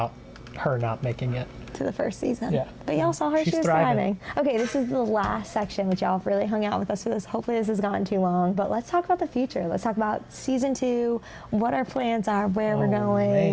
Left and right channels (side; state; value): both; identical; correlation 1.00